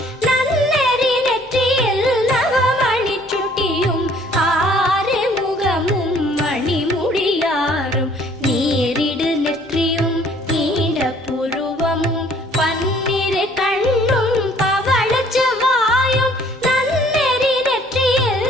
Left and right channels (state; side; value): normal; both; correlation 0.58